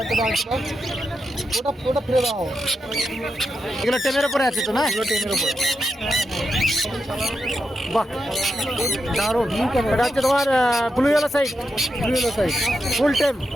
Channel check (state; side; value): normal; both; correlation 0.86